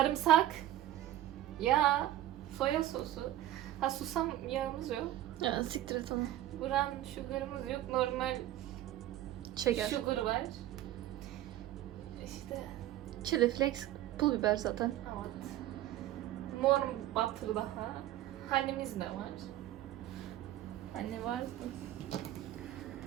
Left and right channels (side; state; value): left; quieter; 13.7 dB